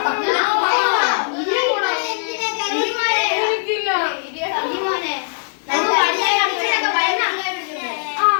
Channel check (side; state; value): right; silent; 66 dB below the other